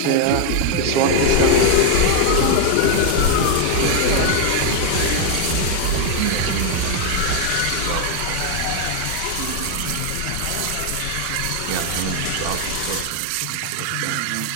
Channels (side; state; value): both; different; correlation 0.00